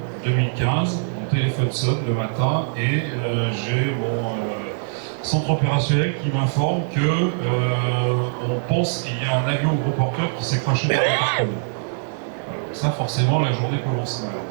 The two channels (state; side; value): silent; left; digital silence